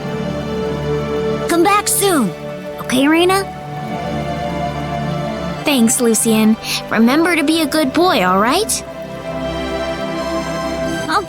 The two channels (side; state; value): both; identical; correlation 1.00